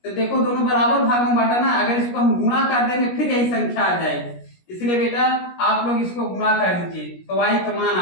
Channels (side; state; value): right; late; 17 ms